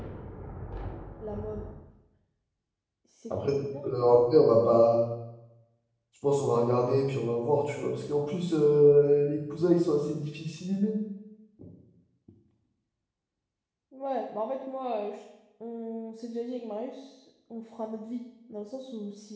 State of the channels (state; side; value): identical; both; correlation 1.00